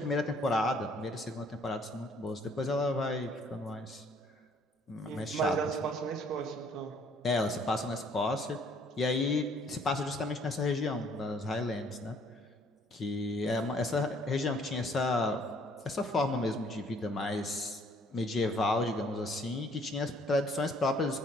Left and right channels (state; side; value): normal; both; correlation 0.61